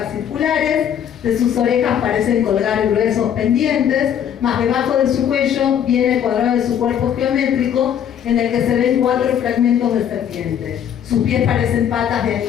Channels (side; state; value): right; quieter; 9.2 dB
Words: circulares, de sus orejas parecen colgar gruesos pendientes, más debajo de su cuello viene el cuadrado de su cuerpo geométrico en el que se ven 4 fragmentos de serpiente. Sus pies parecen patas de